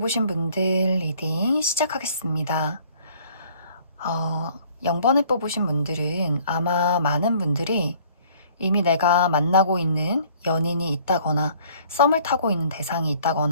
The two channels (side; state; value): both; inverted; correlation -0.56